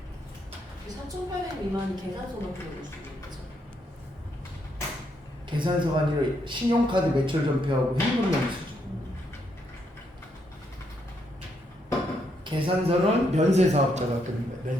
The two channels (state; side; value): normal; both; correlation 0.76